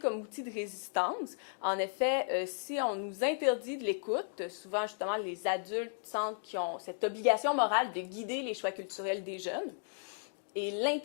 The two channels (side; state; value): right; silent; digital silence